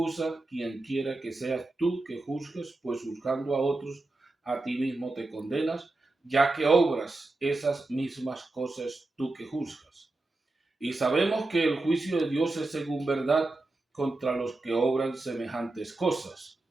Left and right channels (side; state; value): left; quieter; 3.0 dB